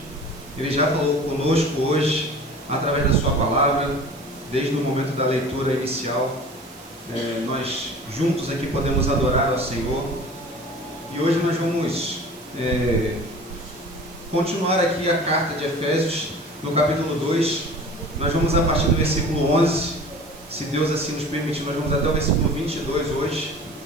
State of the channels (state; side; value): noise; right; hiss, 22 dB below the sound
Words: Ele já falou conosco hoje, através da Sua palavra, desde o momento da leitura inicial. Nós juntos aqui podemos adorar ao Senhor. E hoje nós vamos continuar aqui a carta de Efésios, no capítulo 2. Nós vamos a partir do versículo 11, se Deus assim nos permitir, nós vamos até o versículo 22 hoje.